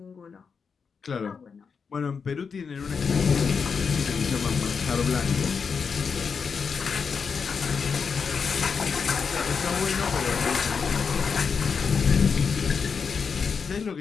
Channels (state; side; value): quieter; right; 5.8 dB